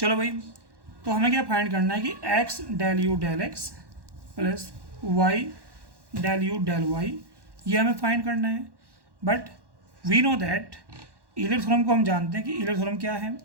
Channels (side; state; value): left; late; 1.1 ms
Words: भाई, तो हमें क्या फाइंड करना है कि x del you del x plus Y del you del y, ये हमें फाइंड करना है। But we know that Euler theorem को हम जानते हैं कि ईलर थ्योरम क्या है,